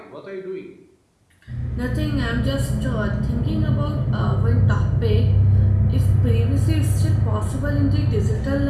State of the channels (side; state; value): both; identical; correlation 1.00